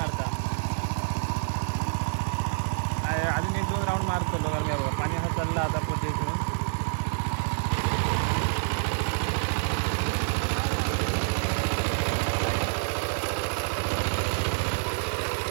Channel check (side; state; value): left; silent; digital silence